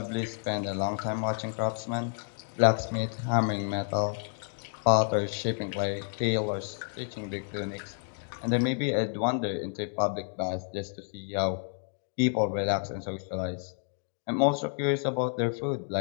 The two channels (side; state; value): right; silent; 55 dB below the other